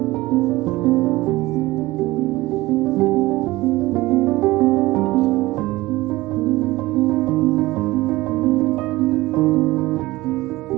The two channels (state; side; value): quieter; left; 19.2 dB